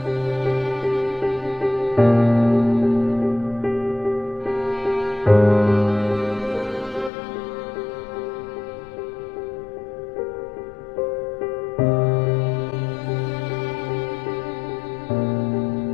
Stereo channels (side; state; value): right; drops out; at 7.1 s